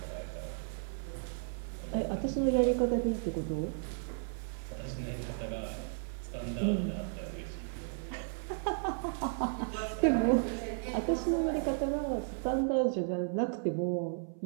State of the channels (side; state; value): left; silent; 55 dB below the other